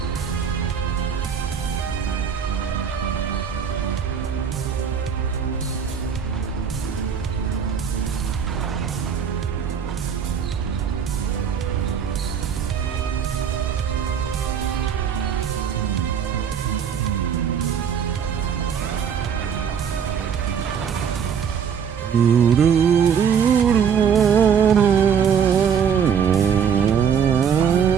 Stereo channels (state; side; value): quieter; left; 7.4 dB